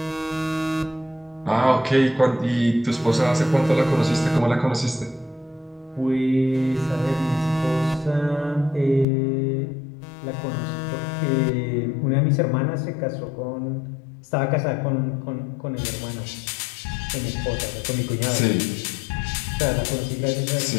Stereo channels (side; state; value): right; drops out; at 9.1 s